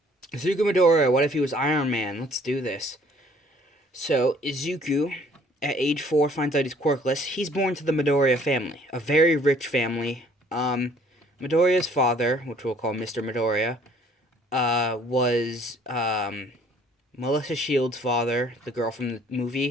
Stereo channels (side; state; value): both; normal; correlation 0.58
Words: Izuku Midoriya, what if he was Iron Man? Let's do this. So, Izuku, at age 4, finds out he's quirkless. He's born to the Midoriya family, a very rich family. Midoriya's father, which we'll call Mr. Midoriya, was Melissa Shields' father, the girl from the